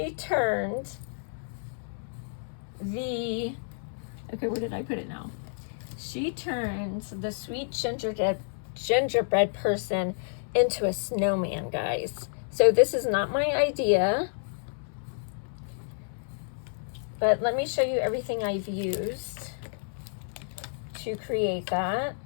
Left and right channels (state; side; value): silent; right; 58 dB below the other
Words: turned the, okay, where did I put it now? She turned the sweet gingerbread person into a snowman, guys. So this is not my idea, but let me show you everything I've used to create that.